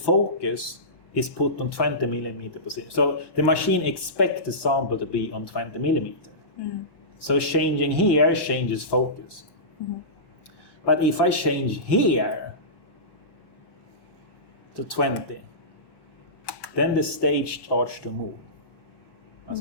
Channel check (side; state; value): right; late; 1.1 ms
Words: is put on 20 millimeter position. So the machine expects the sample to be on 20 millimeter. So changing here changes focus. But if I change here to 20, then the stage starts to move, as